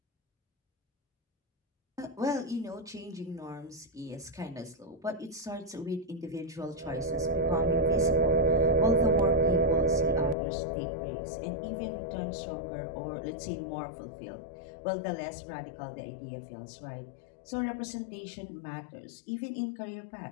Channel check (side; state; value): right; drops out; at 10.4 s